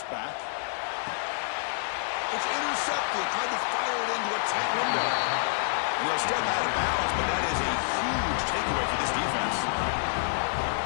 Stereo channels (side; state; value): right; silent; digital silence